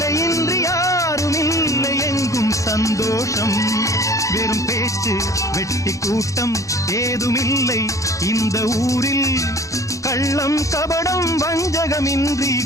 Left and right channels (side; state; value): right; late; 0.16 ms